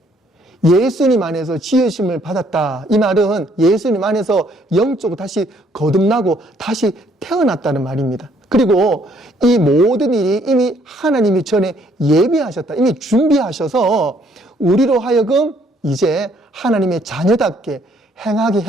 예수님 안에서 지으심을 받았다. 이 말은 예수님 안에서 영적으로 다시 거듭나고 다시 태어났다는 말입니다. 그리고 이 모든 일이 이미 하나님이 전에 예비하셨다. 이미 준비하셔서 우리로 하여금 이제 하나님의 자녀답게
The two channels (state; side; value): normal; both; correlation 0.65